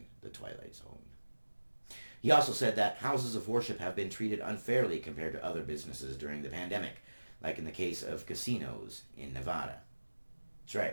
the Twilight Zone. He also said that houses of worship have been treated unfairly compared to other businesses during the pandemic, like in the case of casinos in Nevada. That's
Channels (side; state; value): both; inverted; correlation -1.00